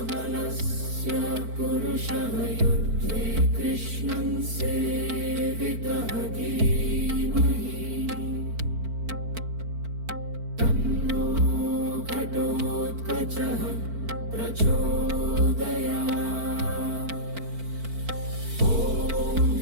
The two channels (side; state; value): left; late; 4.5 ms